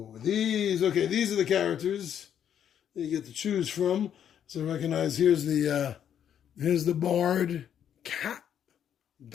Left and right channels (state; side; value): quieter; right; 9.2 dB